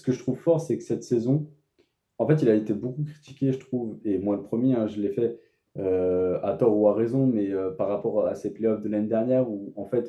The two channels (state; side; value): identical; both; correlation 1.00